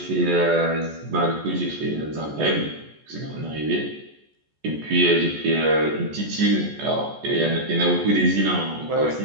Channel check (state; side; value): late; left; 14 ms